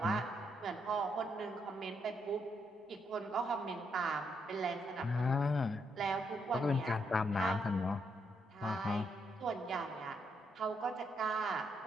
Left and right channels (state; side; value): normal; both; correlation 0.77